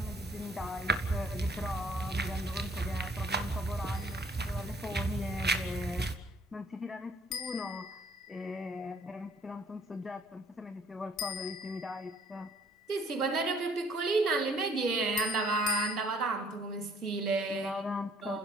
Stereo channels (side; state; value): both; normal; correlation 0.60